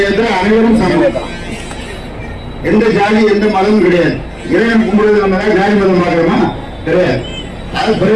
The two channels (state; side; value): identical; both; correlation 1.00